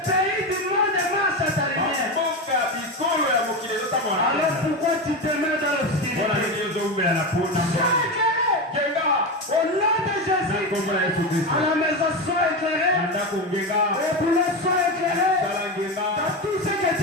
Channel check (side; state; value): both; normal; correlation 0.17